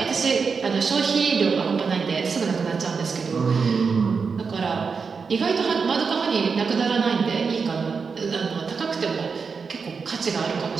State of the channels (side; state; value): left; quieter; 5.3 dB